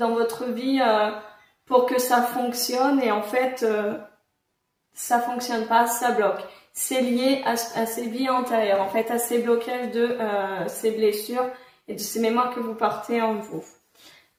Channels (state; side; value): identical; both; correlation 1.00